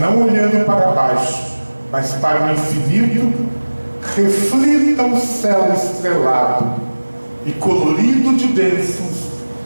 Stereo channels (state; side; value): inverted; both; correlation -1.00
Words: olhando para baixo, mas para o infinito, reflita o céu estrelado e colorido de bênçãos.